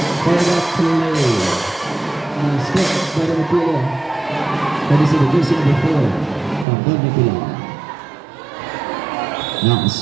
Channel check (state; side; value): drops out; left; at 6.7 s